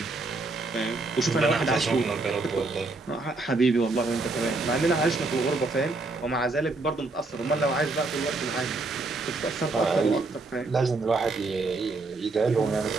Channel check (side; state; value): left; quieter; 3.4 dB